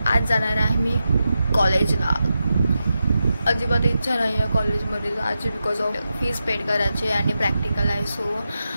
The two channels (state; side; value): inverted; both; correlation -0.89